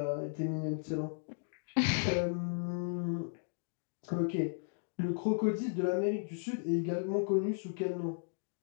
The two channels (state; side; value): silent; right; digital silence